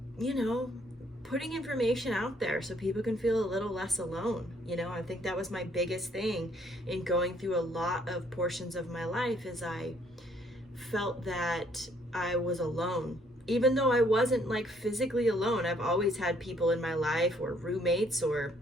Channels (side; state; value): both; normal; correlation 0.66